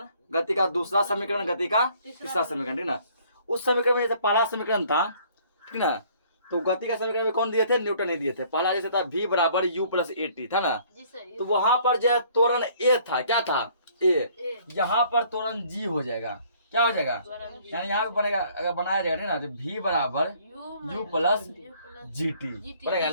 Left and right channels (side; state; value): both; inverted; correlation -0.59